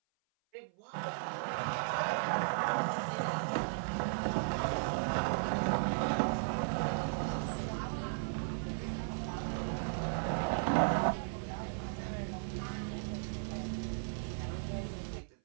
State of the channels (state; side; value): silent; left; 54 dB below the other